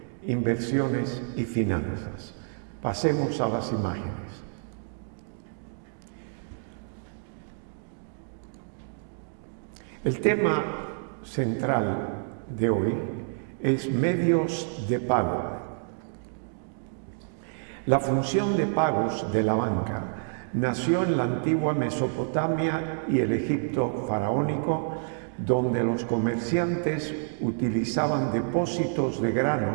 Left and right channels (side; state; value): left; silent; digital silence